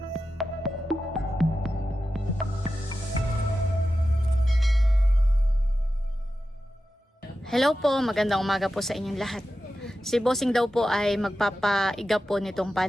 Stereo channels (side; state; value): both; normal; correlation 0.92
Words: Hello po, magandang umaga po sa inyong lahat. Si Bossing daw po ay magpapaiga po nitong